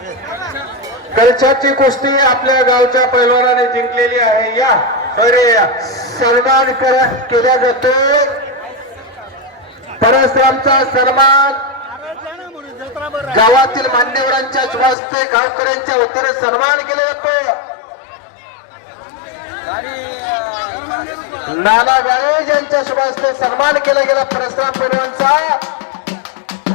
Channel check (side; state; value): right; drops out; at 15.0 s